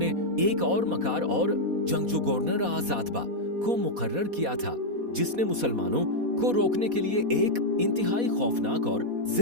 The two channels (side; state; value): left; late; 4.1 ms